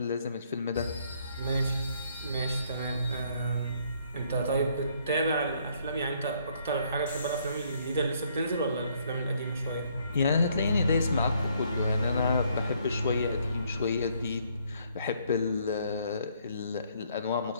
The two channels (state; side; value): inverted; both; correlation -0.68